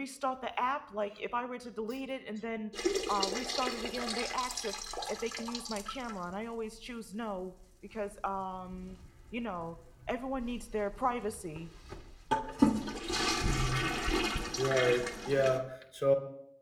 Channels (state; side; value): identical; both; correlation 1.00